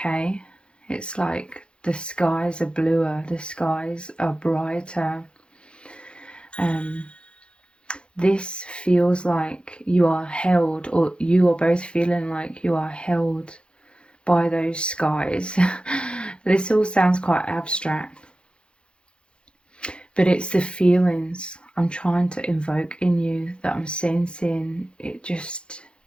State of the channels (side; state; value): right; late; 0.055 ms